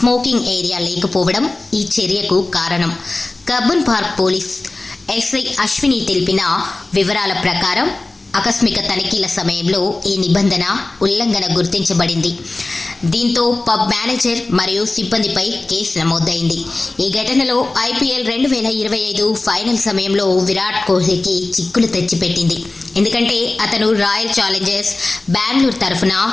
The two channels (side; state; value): right; quieter; 3.1 dB